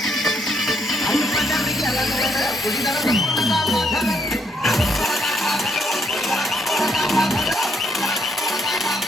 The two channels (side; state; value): both; normal; correlation 0.73